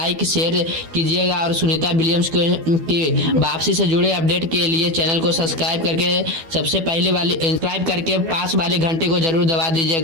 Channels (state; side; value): late; left; 12 ms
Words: शेयर कीजिएगा और सुनीता विलियम्स की वापसी से जुड़े अपडेट के लिए चैनल को सब्सक्राइब करके सबसे पहले वाली सब्सक्राइब करके पास वाले घंटे को जरूर दबा